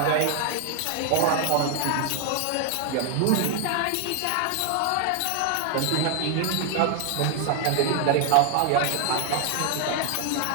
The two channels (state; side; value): different; both; correlation 0.00